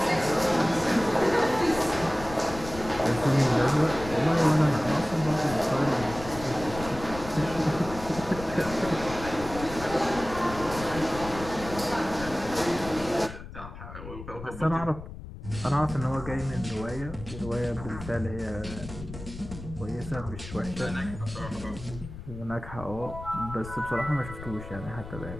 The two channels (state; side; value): noise; left; rumble, 12 dB below the sound